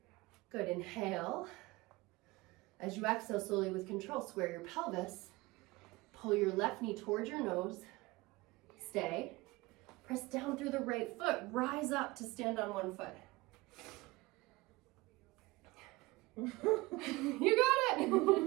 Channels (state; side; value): quieter; left; 21.7 dB